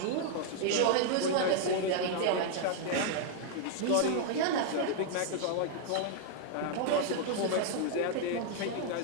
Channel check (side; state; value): both; different; correlation 0.00